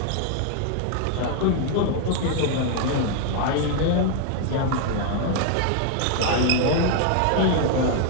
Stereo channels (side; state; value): both; different; correlation 0.00